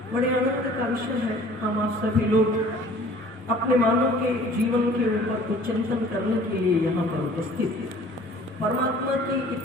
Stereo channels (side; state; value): both; normal; correlation 0.50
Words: बड़े आनंद का विषय है, हम आप सभी लोग अपने मानव के जीवन के ऊपर कुछ चिंतन करने के लिए यहाँ पर उपस्थित हैं। परमात्मा की